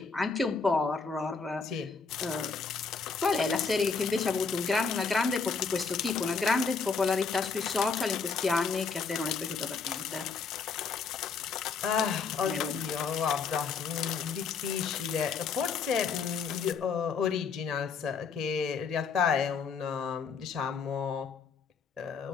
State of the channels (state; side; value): quieter; right; 5.2 dB